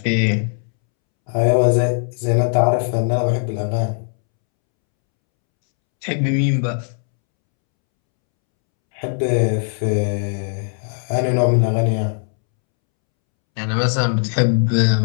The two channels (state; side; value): silent; right; 67 dB below the other